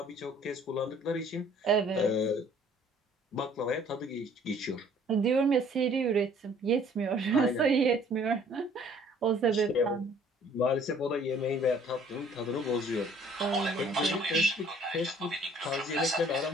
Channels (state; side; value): normal; both; correlation 0.56